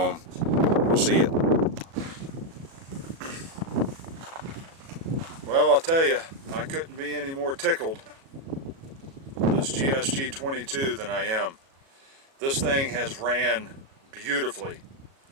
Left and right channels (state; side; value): late; left; 37 ms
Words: We'll see you. Well, I'll tell you, I couldn't be any more tickled with this GSG 22 than I am. This thing has ran beautifully.